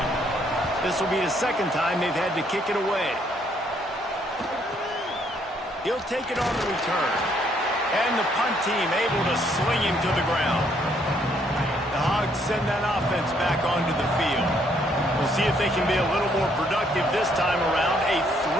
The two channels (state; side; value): normal; both; correlation 0.69